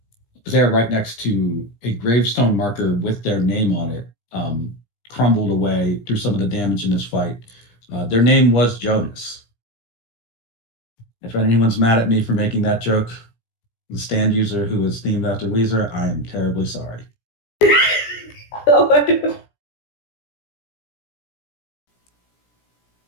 They're right next to a gravestone marker with their name on it, crumbled away through some of the damage in this fight. Their name was Jonas. If anyone's mad at me for making that joke, the stand user who is themed after Weezer, I am terribly sorry.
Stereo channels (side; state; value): right; late; 17 ms